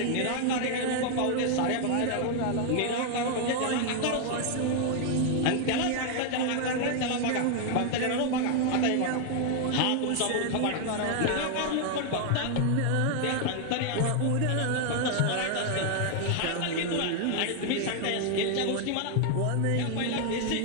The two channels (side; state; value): both; different; correlation 0.00